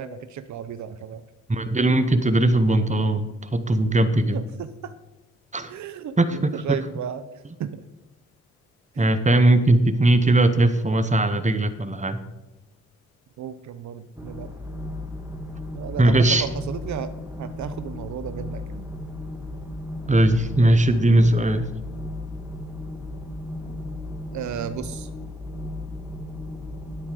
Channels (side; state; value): both; normal; correlation 0.75